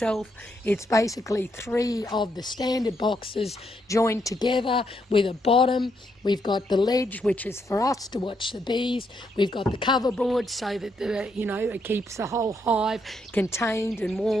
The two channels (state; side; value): normal; both; correlation 0.77